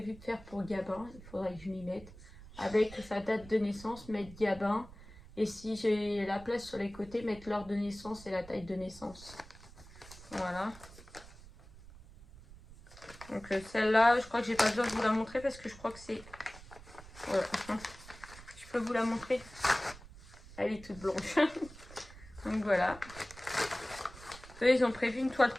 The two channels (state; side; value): noise; right; rumble, 18 dB below the sound